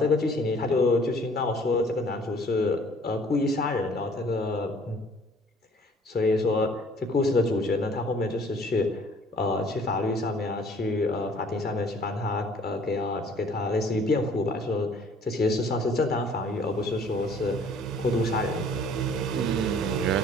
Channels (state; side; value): normal; both; correlation 0.55